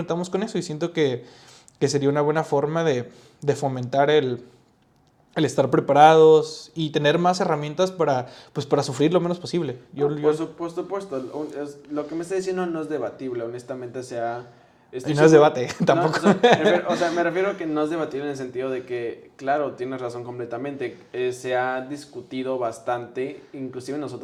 con eso y siento que sería una buena forma de fomentar el estar preparados y tener más herramientas pues, para sufrir lo menos posible. Por supuesto, lo que me está diciendo no es debatible, honestamente, Y no es debate, tampoco. O sea, me refiero a que no es debatible en el sentido de que, claro, tienes razón completamente, se ha discutido bastante, inclusive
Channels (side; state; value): both; identical; correlation 1.00